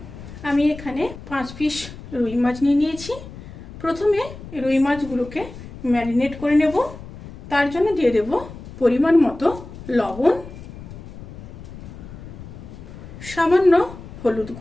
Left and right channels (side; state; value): left; noise; rumble, 14 dB below the sound